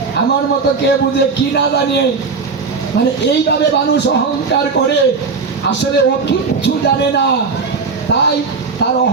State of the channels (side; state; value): left; quieter; 4.7 dB